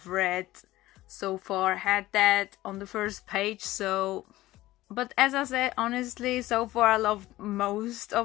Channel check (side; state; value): right; quieter; 16.7 dB